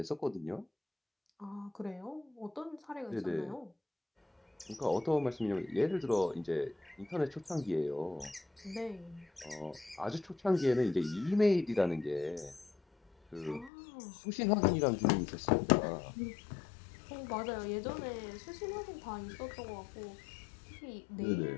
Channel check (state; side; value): drops out; right; at 13.7 s